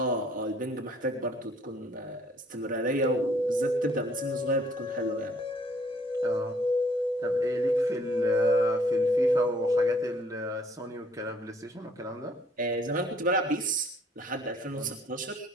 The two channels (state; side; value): normal; both; correlation 0.62